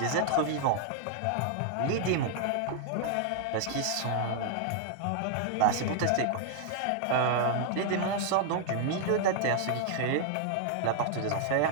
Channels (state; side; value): different; both; correlation 0.00